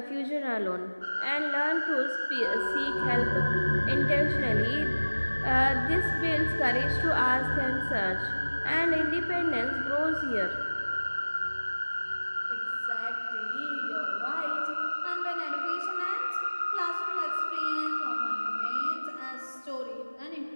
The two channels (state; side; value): inverted; both; correlation -1.00